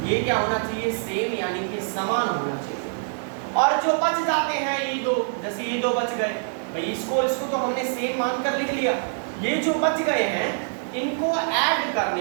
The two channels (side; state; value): left; silent; digital silence